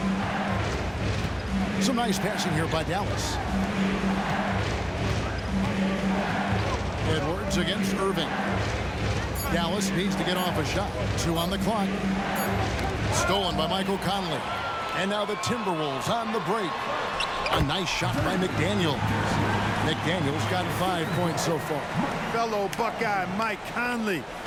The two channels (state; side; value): identical; both; correlation 1.00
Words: Some nice passing here by Dallas. Edwards against Irving. Dallas needs to get off a shot. 2 on the clock. Stolen by Michael Conley. And now the Timberwolves on the break. A nice shot by McDaniels. McDaniels got 5 points so far. Fellow Buckeye Mike Conley,